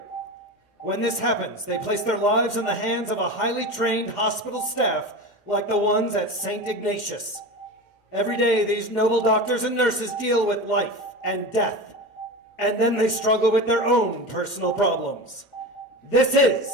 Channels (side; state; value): right; late; 2.1 ms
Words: When this happens, they place their lives in the hands of a highly trained hospital staff like the ones at St. Ignatius. Every day, these noble doctors and nurses deal with life and death, and then they struggle with their own personal problems. This is